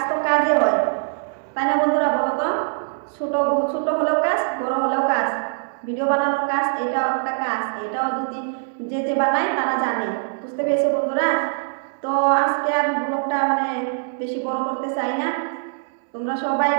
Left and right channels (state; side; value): silent; left; 64 dB below the other